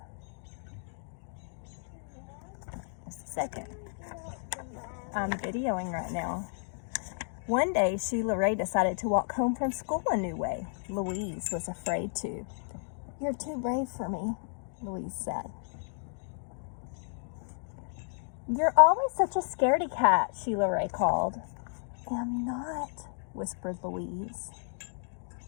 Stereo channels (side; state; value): right; silent; digital silence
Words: Just a second. I'm videoing right now. One day, Sheila Rae decided to walk home from school a new way. Louise was afraid to. You're too brave for me, Louise said. You're always such a scaredy cat, Sheila Rae called. I'm not, whispered Louise.